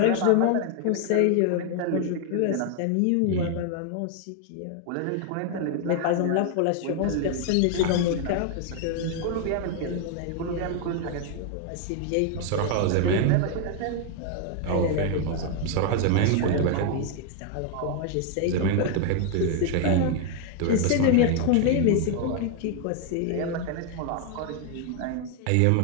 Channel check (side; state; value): both; different; correlation 0.00